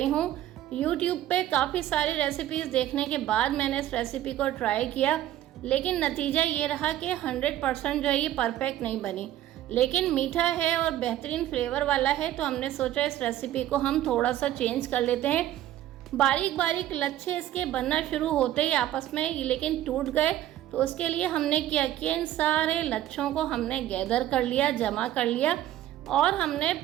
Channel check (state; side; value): quieter; left; 13.0 dB